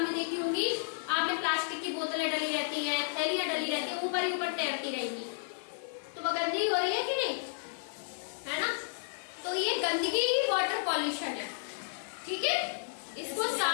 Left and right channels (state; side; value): silent; right; 56 dB below the other